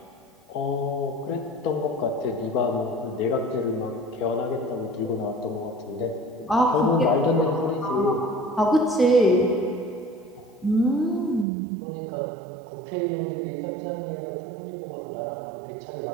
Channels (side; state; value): left; drops out; at 11.5 s